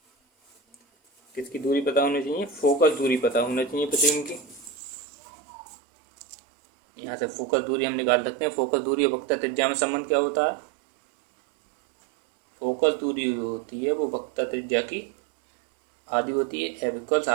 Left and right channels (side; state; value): left; drops out; at 4.8 s